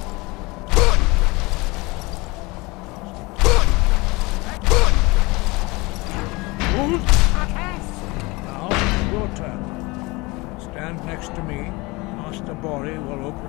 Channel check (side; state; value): right; quieter; 24.1 dB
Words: Now, your turn. Stand next to me. Master Bori will